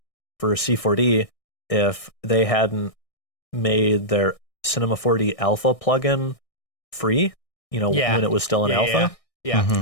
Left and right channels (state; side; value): late; right; 1.6 ms